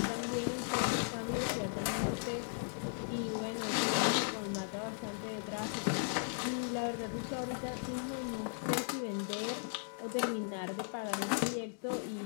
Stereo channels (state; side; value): silent; right; digital silence